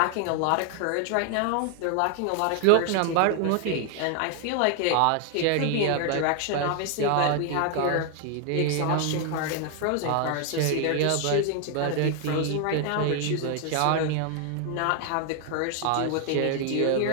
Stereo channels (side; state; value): both; different; correlation 0.00